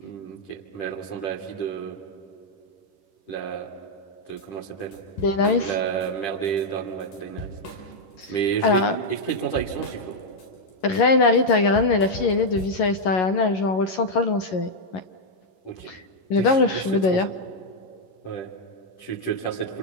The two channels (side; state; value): right; late; 11 ms